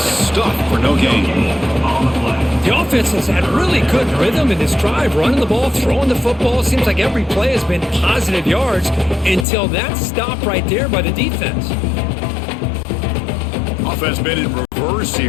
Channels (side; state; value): right; drops out; at 9.5 s